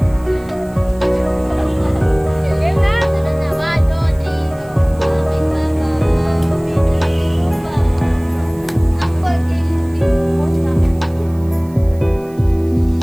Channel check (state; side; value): noise; right; hiss, 27 dB below the sound